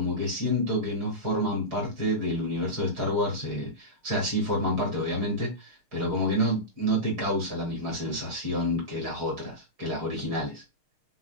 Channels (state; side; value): late; left; 6.5 ms